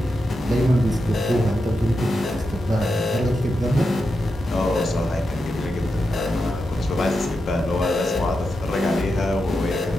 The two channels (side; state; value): both; normal; correlation 0.87